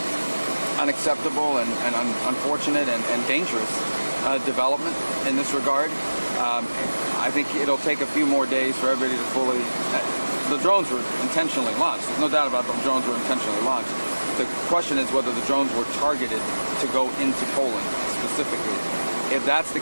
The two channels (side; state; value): both; inverted; correlation -1.00